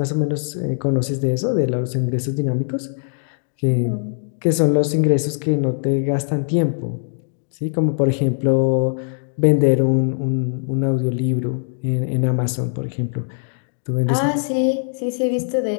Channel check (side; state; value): right; silent; digital silence